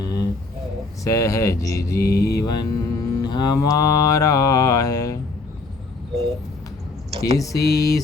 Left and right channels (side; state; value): right; quieter; 3.6 dB